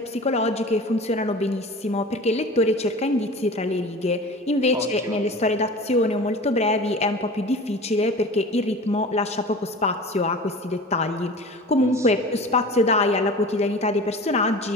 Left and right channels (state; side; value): normal; both; correlation 0.37